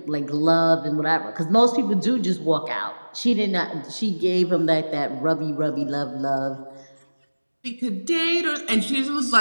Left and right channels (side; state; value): both; inverted; correlation -1.00